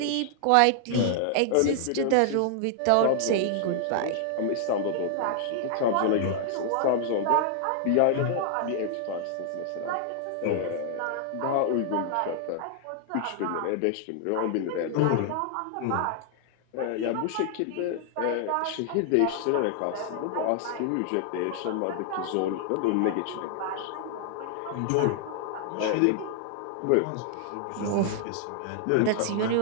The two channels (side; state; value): both; different; correlation 0.00